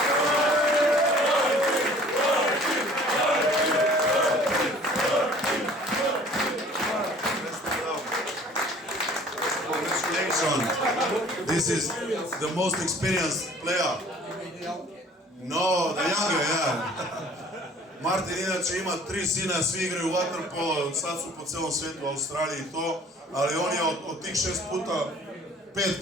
This is the most experienced player. No, the younger, yeah. Martin inače ima 3 sina, svi igraju vaterpolo, sad su po celom svijetu, u Australiji i to, ali on je od tih 5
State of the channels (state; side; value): normal; both; correlation 0.51